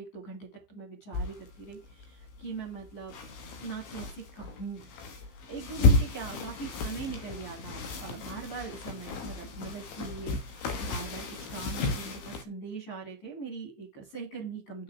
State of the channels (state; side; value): late; right; 15 ms